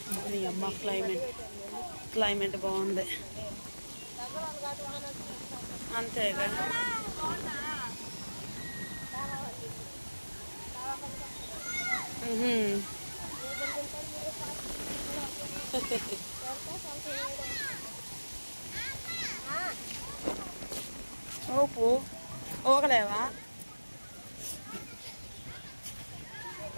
నీ అమ్మ క్లైమేట్ బాగుంది అంతేగా. ఓపు ఓగలేవా?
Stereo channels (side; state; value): both; inverted; correlation -1.00